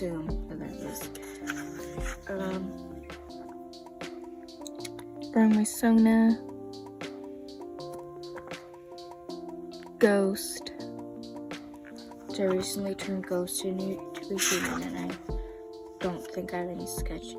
what that is. Burn my Sona. Ghost. Which I recently turned Ghost into a human, and I don't think I have any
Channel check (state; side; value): identical; both; correlation 1.00